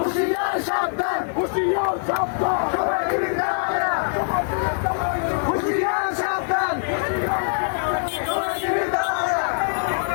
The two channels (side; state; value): right; silent; 63 dB below the other